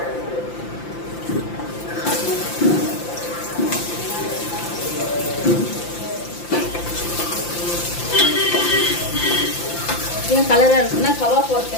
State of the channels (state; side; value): late; right; 5.8 ms